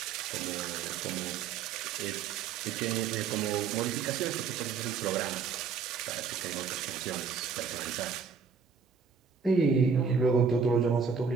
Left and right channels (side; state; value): left; quieter; 5.9 dB